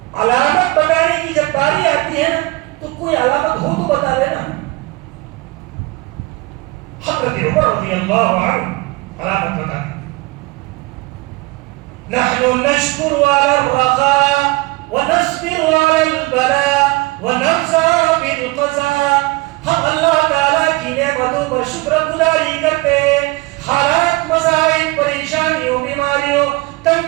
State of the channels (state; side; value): quieter; left; 23.4 dB